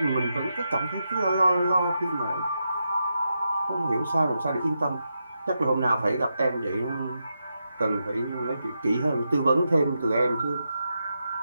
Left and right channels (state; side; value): inverted; both; correlation -0.85